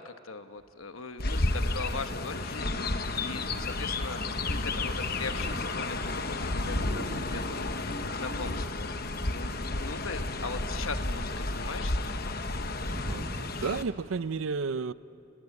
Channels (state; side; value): normal; both; correlation 0.41